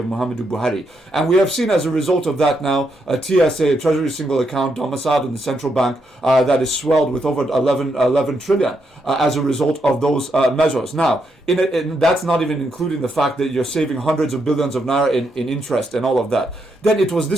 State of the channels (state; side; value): normal; both; correlation 0.79